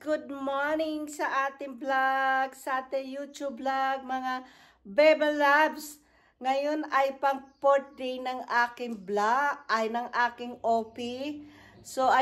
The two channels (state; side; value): identical; both; correlation 1.00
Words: Good morning sa ating vlog, sa ating YouTube vlog, mga Bebe Loves. Ngayon ay pang 4th day ng aking vlog, ay ng aking OP. So,